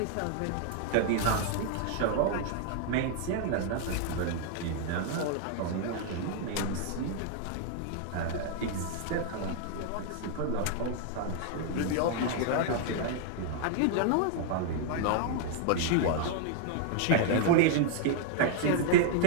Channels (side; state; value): both; different; correlation 0.00